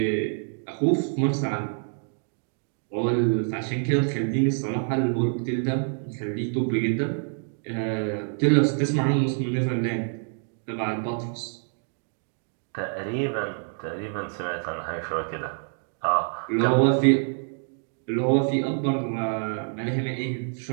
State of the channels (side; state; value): left; silent; 55 dB below the other